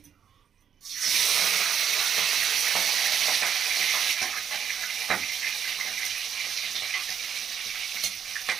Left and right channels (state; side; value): quieter; left; 8.1 dB